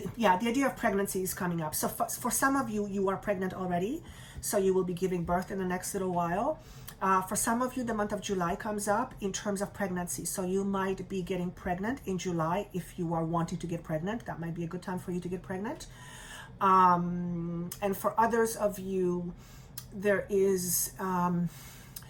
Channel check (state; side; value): identical; both; correlation 1.00